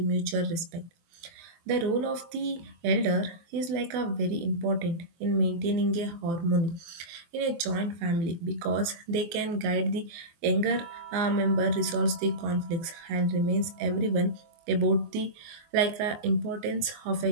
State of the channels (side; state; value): left; late; 23 ms